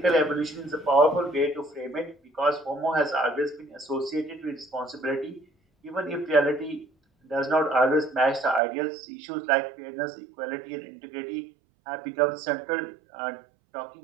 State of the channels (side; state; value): left; drops out; at 8.6 s